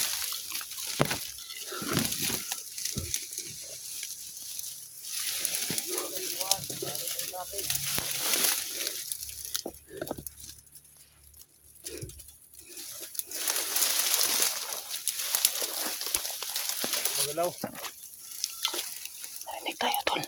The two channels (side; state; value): both; identical; correlation 1.00